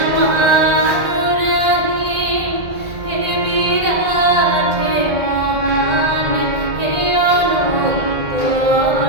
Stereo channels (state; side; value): late; left; 1.7 ms